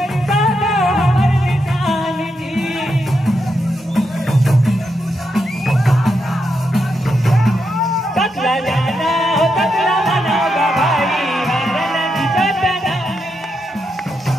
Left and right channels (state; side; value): normal; both; correlation 0.83